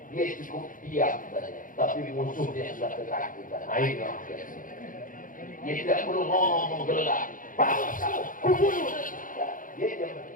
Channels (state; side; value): late; right; 0.39 ms